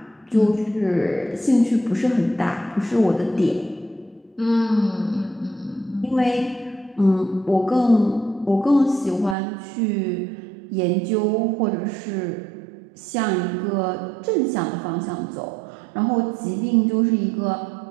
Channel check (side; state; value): left; drops out; at 9.3 s